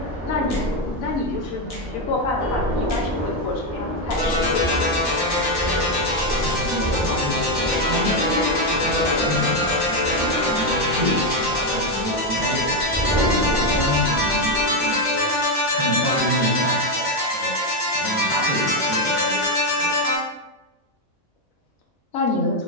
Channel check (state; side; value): normal; both; correlation 0.06